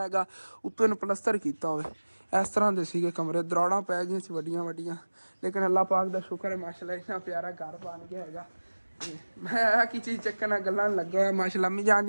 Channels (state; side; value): inverted; both; correlation -1.00